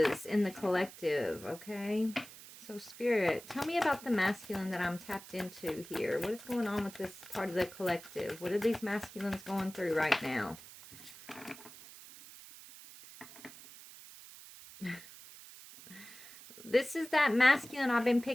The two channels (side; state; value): right; noise; hiss, 17 dB below the sound